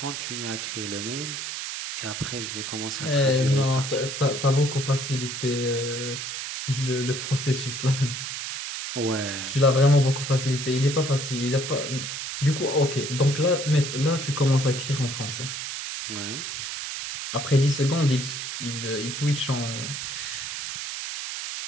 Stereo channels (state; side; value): noise; right; hiss, 5 dB below the sound